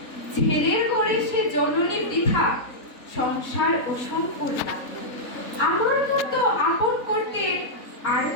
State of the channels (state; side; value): late; right; 3.9 ms